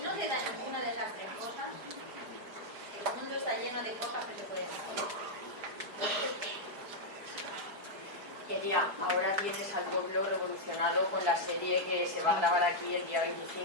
te da ninguna de esas 3 cosas, el mundo está lleno de cosas que se pueden hacer. Quería, ahora vienes al pueblo revolucionado con la serie que se va a grabar aquí el día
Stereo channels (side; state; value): left; late; 4.8 ms